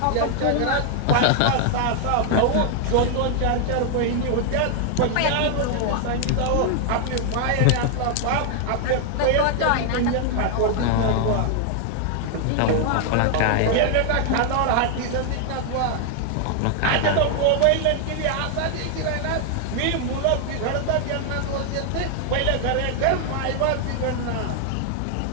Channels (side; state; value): both; different; correlation 0.00